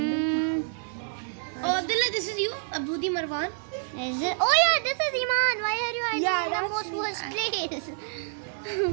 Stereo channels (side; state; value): left; silent; 58 dB below the other